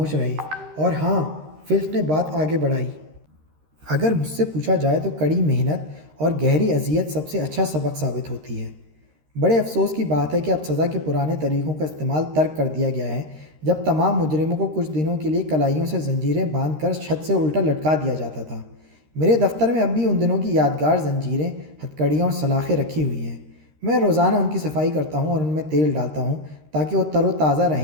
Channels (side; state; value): left; late; 13 ms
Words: رہے۔ اور ہاں، فلچ نے بات آگے بڑھائی، اگر مجھ سے پوچھا جائے تو کڑی محنت اور گہری اذیت سب سے اچھا سبق ثابت ہوتی ہے۔ بڑے افسوس کی بات ہے کہ اب سزا کے پرانے طریقوں کا استعمال ترک کر دیا گیا ہے، جب تمام مجرموں کو کچھ دنوں کے لیے کلائیوں سے زنجیریں باندھ کر چھت سے الٹا لٹکا دیا جاتا تھا۔ میرے دفتر میں اب بھی ان دنوں کی یادگار زنجیریں، ہتھکڑیاں اور سلاخیں رکھی ہوئی ہیں۔ میں روزانہ ان کی صفائی کرتا ہوں اور ان میں تیل ڈالتا ہوں تاکہ وہ تر و تازہ